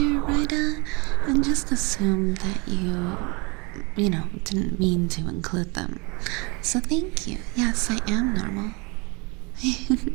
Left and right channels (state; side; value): quieter; left; 28.9 dB